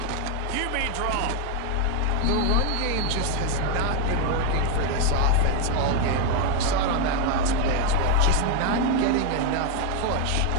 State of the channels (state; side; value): different; both; correlation 0.01